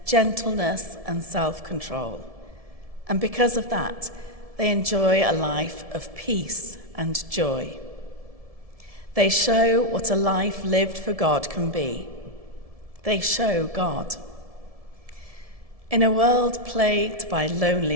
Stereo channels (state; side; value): late; left; 1.7 ms